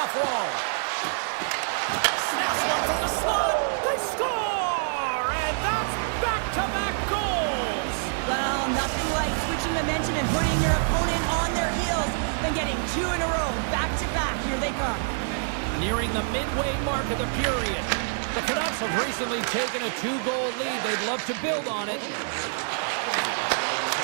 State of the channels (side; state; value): left; silent; digital silence